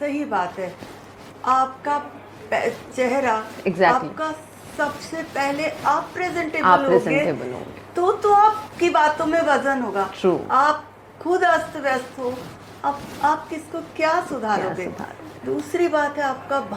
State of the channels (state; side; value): identical; both; correlation 1.00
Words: बात है, आपका चेहरा, आपका सबसे पहले आप प्रेजेंटेबल होगे तो आपकी बातों में वजन होगा। आप खुद अस्त व्यस्त हो, आप किसको क्या सुधारोगे। दूसरी बात है आपका